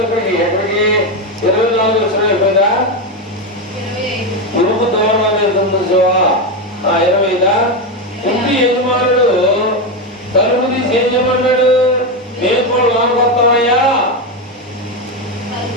ఎక్కడికి 24 లక్షలు అయిపోయిందా? ఇరుపు దూరం అనేది చూసావా? 25. ఇంటి యజమానుడు తలుపు తీసి ఏం చేయమన్నాడు? మేము కూడా లోపలికి వస్తామయ్యా,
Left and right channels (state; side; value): normal; both; correlation 0.11